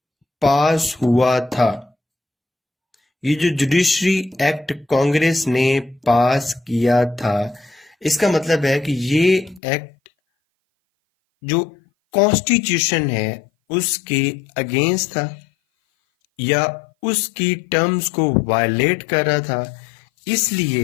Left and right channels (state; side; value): drops out; right; at 9.6 s